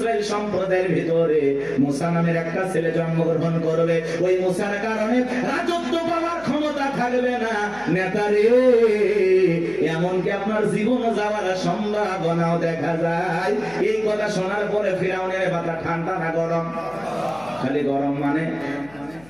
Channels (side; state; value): left; noise; hum, 25 dB below the sound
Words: সম্প্রদায়ের ভিতরে মুসা নামের একটা ছেলে জন্মগ্রহণ করবে। ওই মুসার কারণে রাজত্ব পাওয়ার ক্ষমতা থাকবে না। নেতারে, এমনকি আপনার জীবন যাওয়ার সম্ভাবনাও দেখা যায়। এই কথা শোনার পরে ফিরাউনের মাথা ঠান্ডা না গরম? খালি গরম। মানে